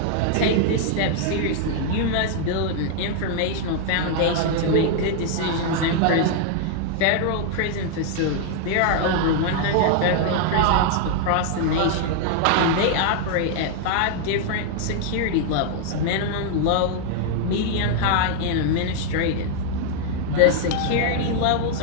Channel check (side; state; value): both; different; correlation 0.00